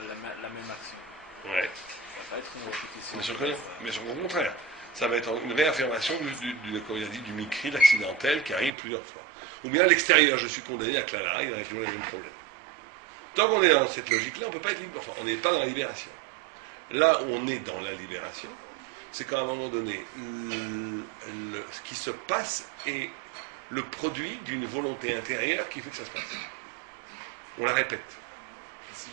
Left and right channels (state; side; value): drops out; left; at 8.7 s